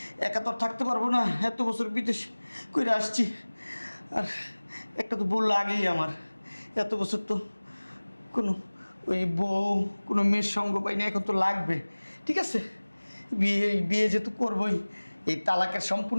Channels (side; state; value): both; inverted; correlation -1.00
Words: একা তো আর থাকতে পারবো না, এত বছর বিদেশ করে আসছি। আর একটা তো বললো আগেই আমার, এত বছর তো কোনো ওই বউ কোনো মেয়ের সঙ্গ পাই না, এখন তো লাগবে। ঠিক আছে, বিয়ে যেহেতু করবোই, এই তালাকের